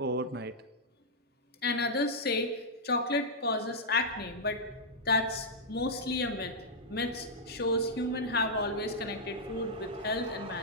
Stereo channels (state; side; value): normal; both; correlation -0.08